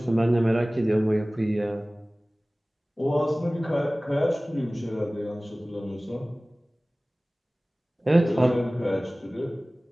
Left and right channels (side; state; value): both; normal; correlation 0.98